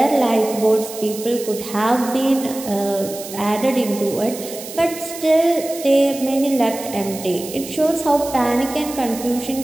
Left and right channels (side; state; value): right; noise; hiss, 12 dB below the sound